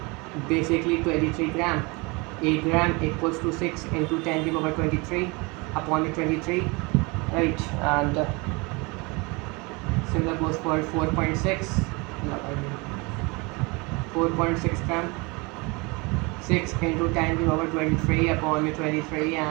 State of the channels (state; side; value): quieter; left; 27.3 dB